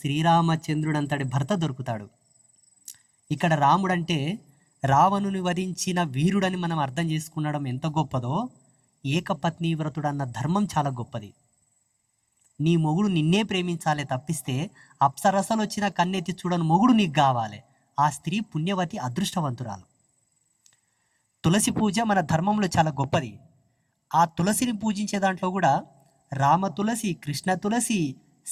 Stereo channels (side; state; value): both; identical; correlation 1.00